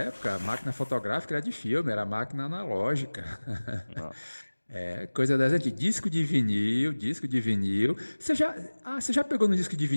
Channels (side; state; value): both; inverted; correlation -1.00